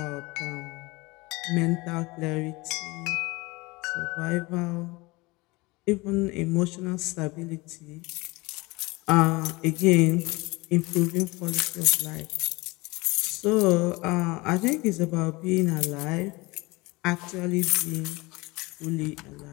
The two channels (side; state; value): right; quieter; 23.4 dB